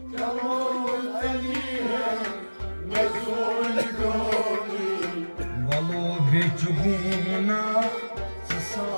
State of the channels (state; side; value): inverted; both; correlation -1.00